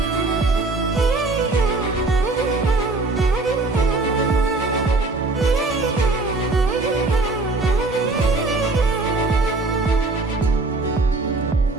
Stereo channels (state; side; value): quieter; left; 3.3 dB